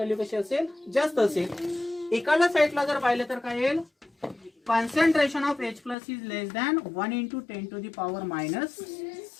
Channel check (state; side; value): drops out; right; at 6.0 s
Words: कशी असेल, जास्त असेल. इकडल्या साईडला जर पाहिलं तर काय येईल, concentration of H plus is less than 1 into 10 to the power minus